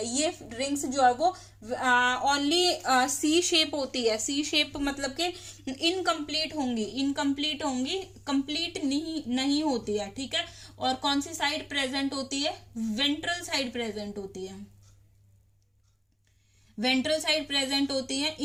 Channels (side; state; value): both; identical; correlation 1.00